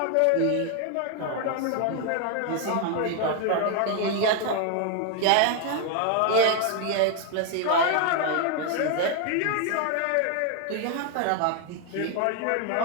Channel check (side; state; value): both; different; correlation 0.00